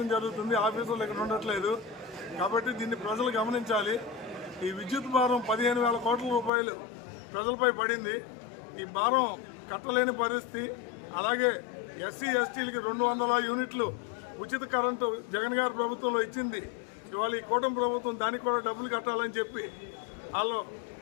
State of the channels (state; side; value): drops out; right; at 6.5 s